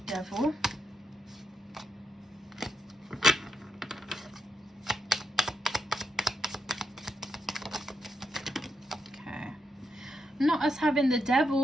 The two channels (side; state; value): both; normal; correlation 0.82